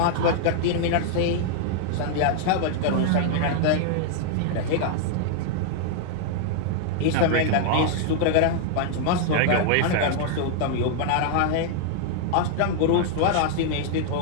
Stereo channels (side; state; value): both; different; correlation -0.01